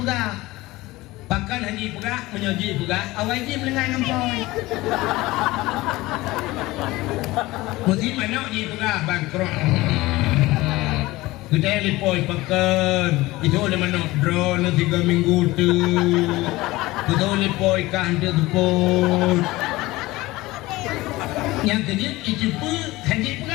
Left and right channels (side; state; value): right; quieter; 19.5 dB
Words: Bahkan haji pegah, menyoji pegah, awal haji melengai ngampoi. Mesti mana haji pegah, bangkrut. Kita yang lipoi pakan. Itu oleh mana drone 3 minggu tu. Kita lipoi kah dia tepun. Yang kedua, itu pun haji